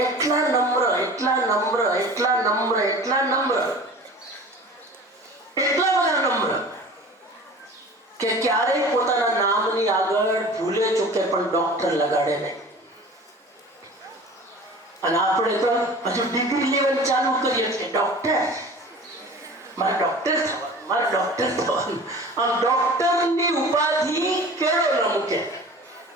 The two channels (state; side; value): normal; both; correlation 0.40